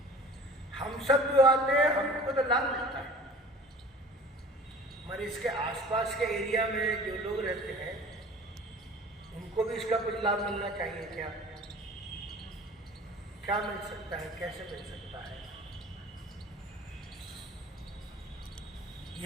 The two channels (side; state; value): both; normal; correlation 0.44